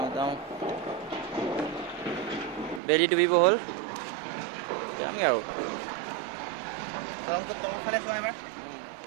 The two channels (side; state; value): left; drops out; at 2.8 s